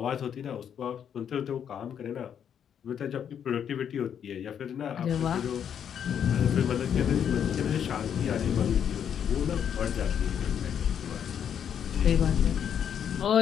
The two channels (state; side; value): quieter; right; 8.5 dB